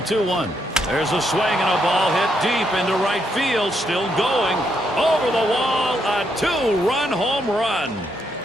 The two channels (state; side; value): normal; both; correlation 0.77